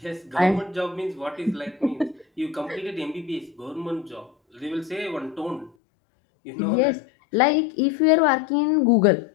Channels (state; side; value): drops out; right; at 5.7 s